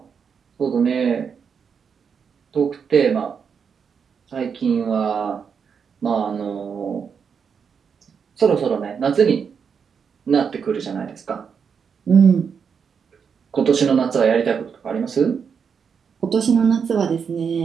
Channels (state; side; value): quieter; left; 6.5 dB